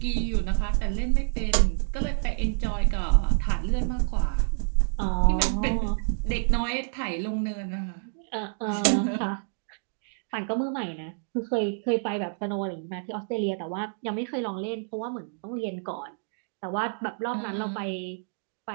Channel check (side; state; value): left; silent; digital silence